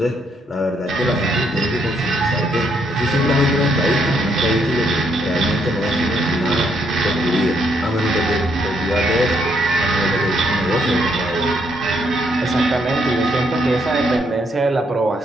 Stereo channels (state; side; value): normal; both; correlation 0.73